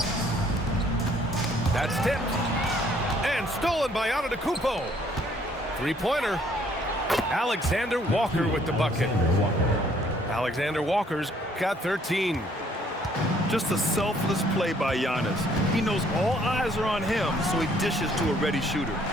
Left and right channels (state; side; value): normal; both; correlation 0.63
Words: That's tipped. And stolen by Antetokounmpo. Three-pointer. Alexander Walker with the bucket. Alexander Walker's got 13. Just a selfless play by Giannis. He knows all eyes are on him, so he dishes to a ready shooter.